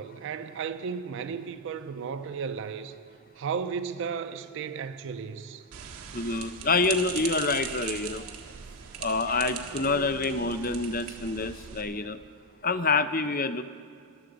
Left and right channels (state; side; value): normal; both; correlation 0.01